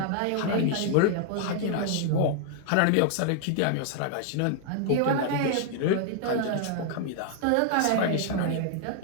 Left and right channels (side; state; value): both; different; correlation 0.00